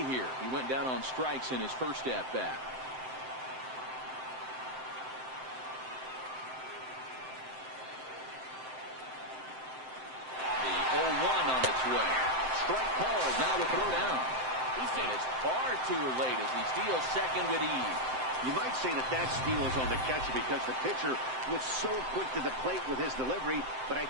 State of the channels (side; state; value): left; late; 7.7 ms